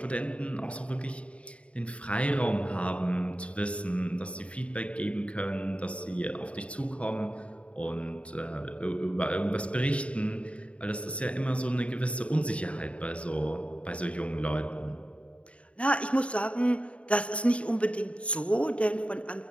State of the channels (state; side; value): late; right; 0.062 ms